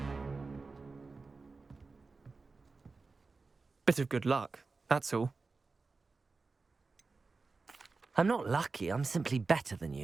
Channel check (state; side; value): quieter; left; 4.0 dB